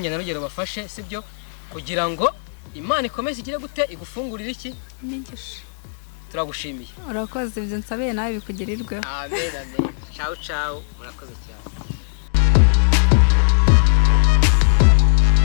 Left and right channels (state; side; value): silent; right; digital silence